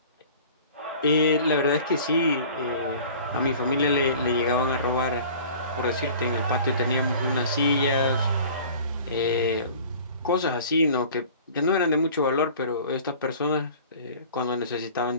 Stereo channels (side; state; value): both; inverted; correlation -0.45